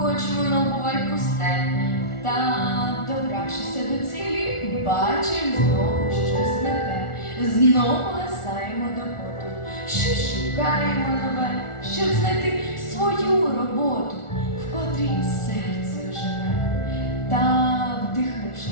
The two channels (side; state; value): right; late; 1.4 ms